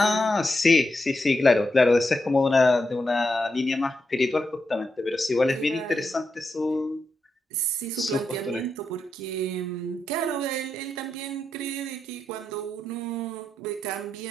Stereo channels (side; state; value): both; normal; correlation 0.85